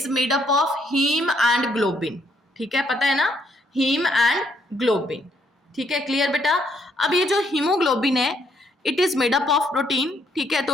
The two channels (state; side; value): normal; both; correlation 0.71